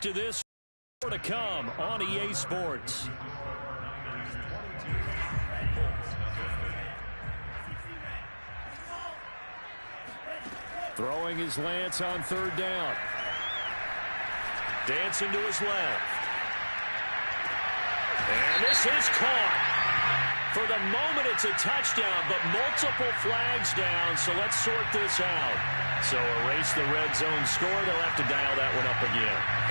this. More to come on EA Sports. Throwing his Lance on 3rd down. Dancing to his left. And this is caught. For the moment, it's a touchdown, but multiple flags down, so let's sort this out. So erase the red zone score. They'll have to dial that one up again.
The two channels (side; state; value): both; inverted; correlation -1.00